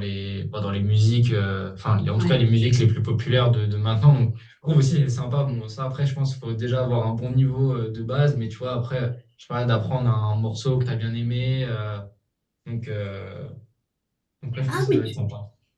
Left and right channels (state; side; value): identical; both; correlation 1.00